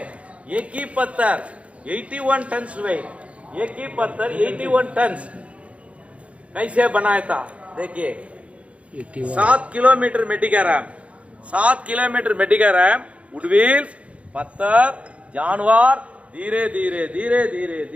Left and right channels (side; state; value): left; late; 0.063 ms